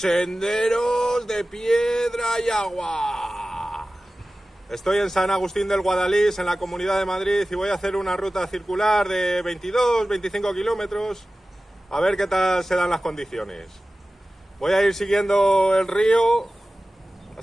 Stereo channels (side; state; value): both; normal; correlation 0.96